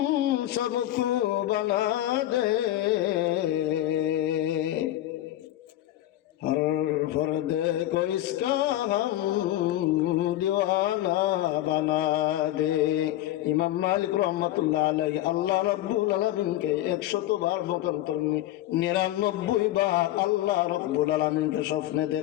सबको बना दे, हर फर्द को इसका हम दीवाना बना दे। ইমাম মালিক রহমাতুল্লাহ আলাইহি আল্লাহ রাব্বুল আলামিনকে 100 বার মতান্তর 99 বার আল্লাহ রাব্বুল আলামিনকে স্বপ্নে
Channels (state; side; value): quieter; right; 14.4 dB